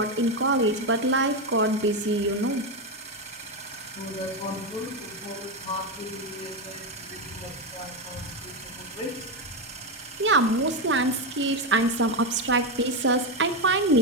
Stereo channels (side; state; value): both; normal; correlation 0.09